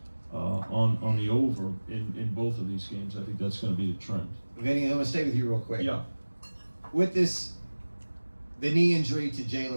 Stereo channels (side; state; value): both; inverted; correlation -1.00